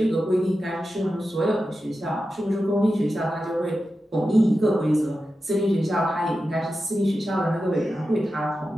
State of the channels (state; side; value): normal; both; correlation 0.91